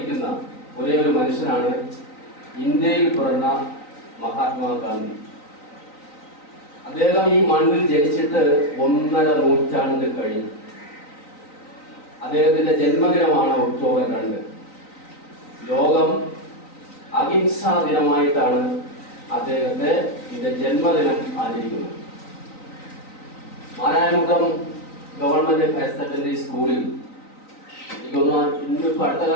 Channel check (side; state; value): right; late; 3.9 ms